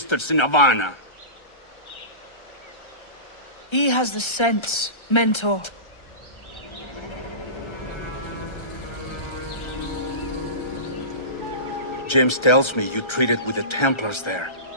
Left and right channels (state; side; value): late; right; 1.3 ms